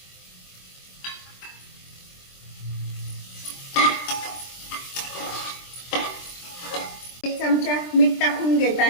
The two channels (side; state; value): right; late; 23 ms